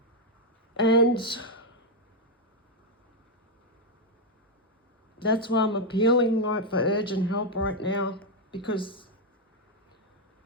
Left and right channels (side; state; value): both; normal; correlation 0.02